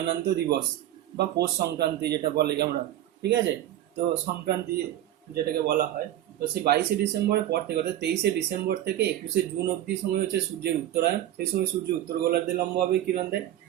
দিবস। বা পৌষ সংক্রান্তি যেটা বলে আমরা, ঠিক আছে। তো সংক্রান্তি যেটাকে বলা হয়, তো সেই 22শে ডিসেম্বরের পর থেকে অর্থাৎ 23শে ডিসেম্বর থেকে 21শে জুন অবধি সময় হচ্ছে সূর্যের উত্তরায়ণ। সেই সময় সূর্য উত্তর গোলার্ধে লম্বভাবে কিরণ দেয়,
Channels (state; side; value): quieter; left; 12.8 dB